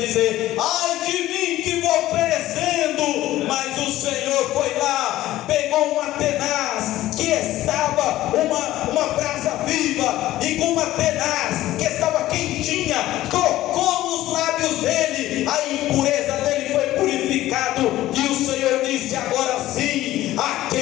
ai de mim que vou perecendo. Mas o Senhor foi lá, pegou uma tenaz que estava uma brasa viva, e com uma tenaz que estava quentinha, tocou nos lábios dele, a impureza dele foi purificado. E o Senhor disse: agora sim, a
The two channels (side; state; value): right; quieter; 15.2 dB